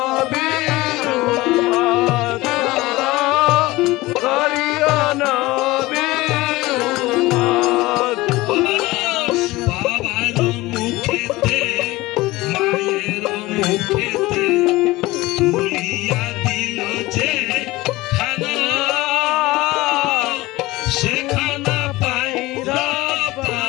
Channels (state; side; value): quieter; right; 19.8 dB